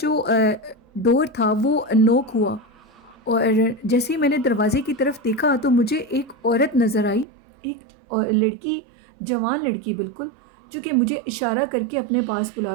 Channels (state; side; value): drops out; left; at 7.2 s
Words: ڈور تھا وہ نوک ہوا اور جیسے ہی میں نے دروازے کی طرف دیکھا تو مجھے ایک عورت نظر آئی، ایک لڑکی، جوان لڑکی بالکل، جو کہ مجھے اشارہ کر کے اپنے پاس